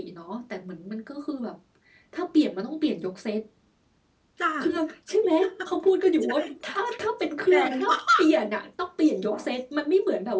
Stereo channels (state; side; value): identical; both; correlation 1.00